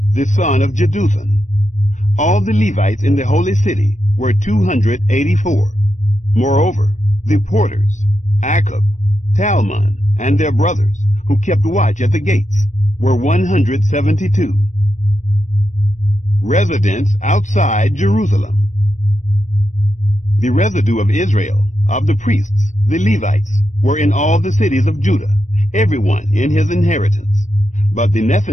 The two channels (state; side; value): late; right; 0.35 ms